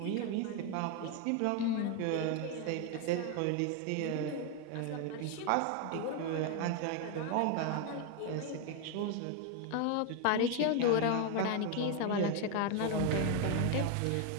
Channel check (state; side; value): different; both; correlation 0.01